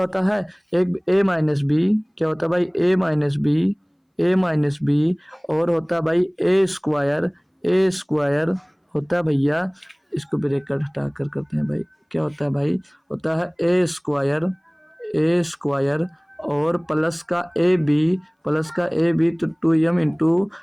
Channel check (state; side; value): identical; both; correlation 1.00